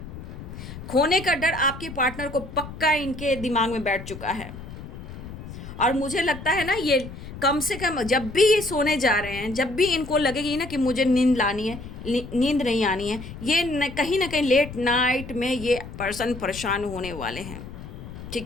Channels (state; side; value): noise; left; rumble, 12 dB below the sound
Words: खोने का डर आपके पार्टनर को पक्का इनके दिमाग में बैठ चुका है, और मुझे लगता है ना ये कम से कम जब भी ये सोने जा रहे हैं, जब भी इनको लगेगी ना कि मुझे नींद लानी है, नींद नहीं आनी है, ये कहीं ना कहीं लेट नाइट में ये पर्सन परेशान होने वाले हैं,